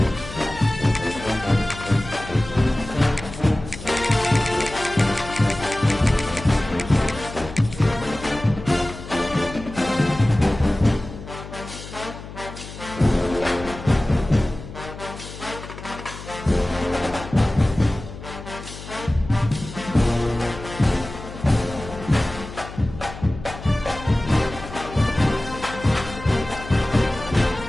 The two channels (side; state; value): left; noise; hum, 13 dB below the sound